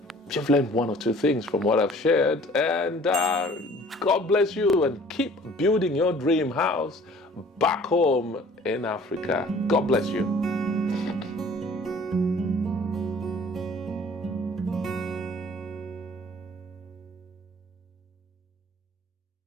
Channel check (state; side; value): normal; both; correlation 0.51